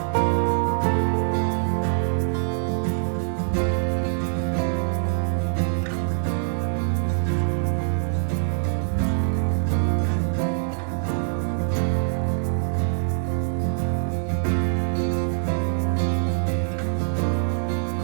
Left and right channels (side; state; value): left; silent; digital silence